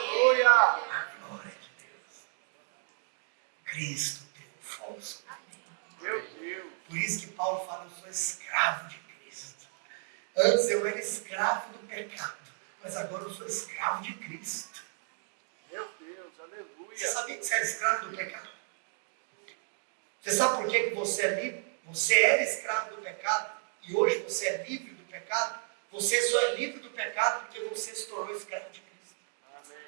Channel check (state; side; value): silent; left; 56 dB below the other